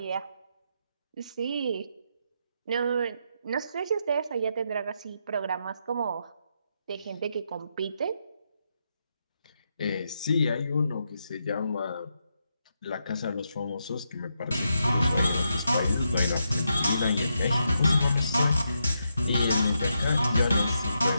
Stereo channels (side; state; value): both; inverted; correlation -0.83